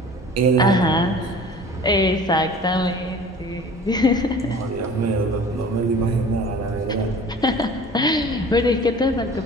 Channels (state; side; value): normal; both; correlation 0.44